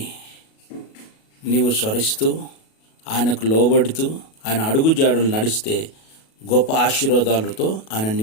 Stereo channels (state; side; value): late; right; 37 ms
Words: నీవు స్మరిస్తూ ఆయనకు లోబడుతూ ఆయన అడుగుజాడులు నడిస్తే గొప్ప ఆశీర్వాదాలతో ఆయన